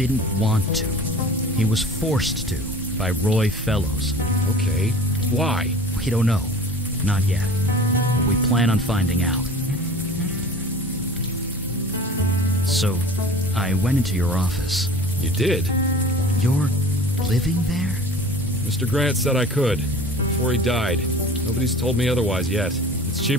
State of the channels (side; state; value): both; normal; correlation 0.41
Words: want to. He was forced to by Roy Fellows. Okay. Why? We don't know. Not yet. But we plan on finding out. So, I went into your office. You did? You're living there? Mr. Grant said I could. Before he died. Nobody's told me otherwise yet. It's